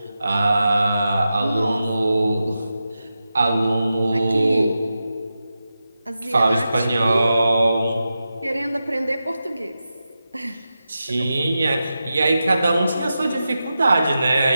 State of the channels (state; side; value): inverted; both; correlation -0.91